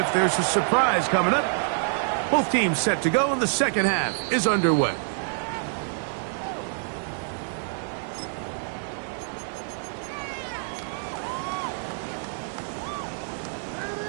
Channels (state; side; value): silent; left; 57 dB below the other